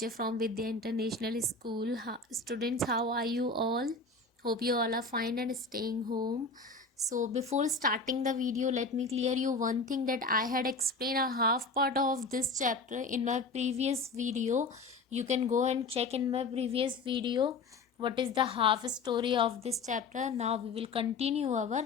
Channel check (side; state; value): right; quieter; 3.7 dB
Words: from Vidya International School. Students, how are you all? Hope you all are fine and staying home. So, before starting the video, let me clear you one thing that I had explained a half part of this chapter in my previous video. You can go and check in my previous video what is the half story of this chapter. Now, we will continue our